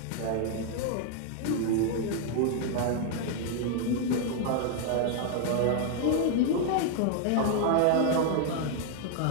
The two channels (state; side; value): different; both; correlation 0.00